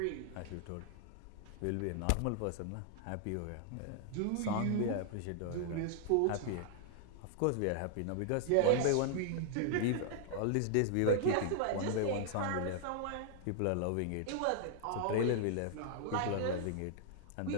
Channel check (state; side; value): different; both; correlation 0.00